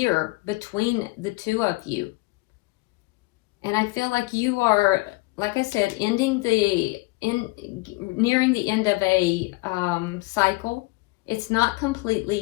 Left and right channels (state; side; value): quieter; right; 23.4 dB